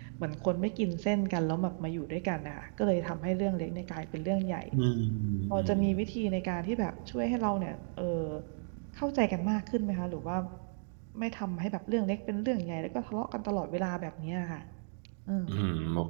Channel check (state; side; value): silent; left; digital silence